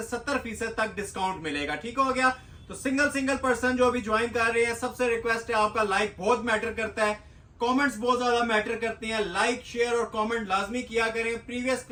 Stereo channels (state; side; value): identical; both; correlation 1.00